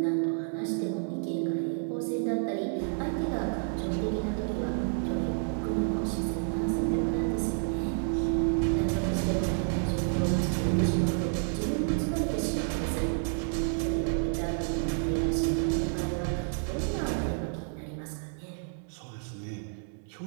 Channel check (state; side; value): silent; left; 58 dB below the other